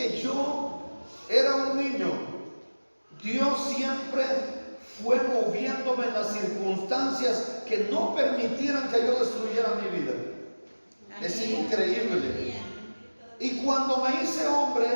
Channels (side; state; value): both; inverted; correlation -1.00